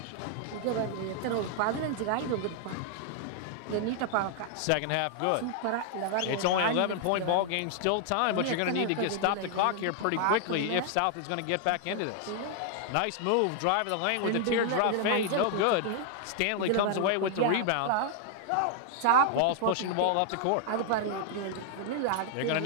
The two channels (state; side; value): different; both; correlation 0.00